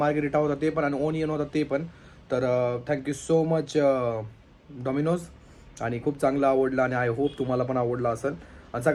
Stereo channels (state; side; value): identical; both; correlation 1.00